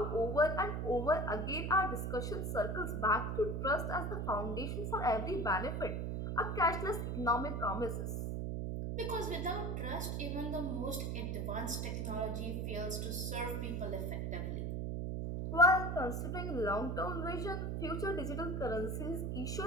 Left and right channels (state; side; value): noise; right; hum, 1 dB below the sound